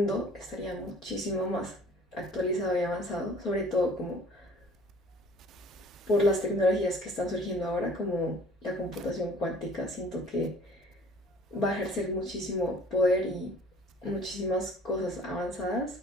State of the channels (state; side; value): normal; both; correlation 0.51